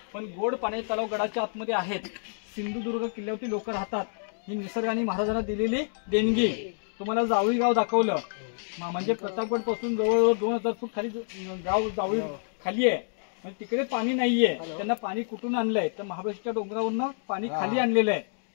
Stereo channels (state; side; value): silent; right; digital silence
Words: पण गोड पाण्याचे तलाव गडाच्या आतमध्ये आहेत. सिंधुदुर्ग किल्ल्यावरती लोक राहतात. ही निसर्गाने महाराजांना दिलेली देणगी. तुम्हाला जावळी गाव दाखवलं, म्हणजे प्रतापगड पासून जवळजवळ 2000 फूट खाली गाव जावळी खाली आहे. म्हणजे तिकडे पाणी नाहीये. त्यांना पाणी कुठून आणलंय? तर महाबळेश्वरच्या डोंगरावरनं पाणी खाली आणलेलं आहे.